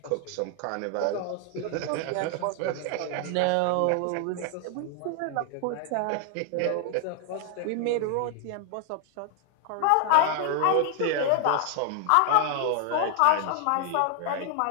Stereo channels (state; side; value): different; both; correlation 0.00